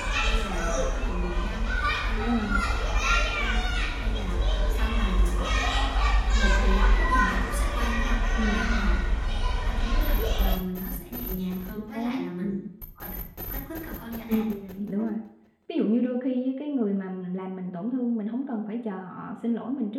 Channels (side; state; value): both; identical; correlation 1.00